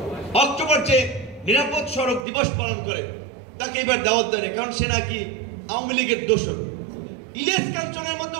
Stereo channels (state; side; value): drops out; left; at 2.2 s